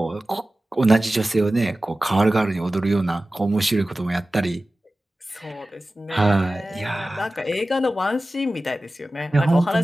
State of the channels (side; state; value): both; normal; correlation 0.96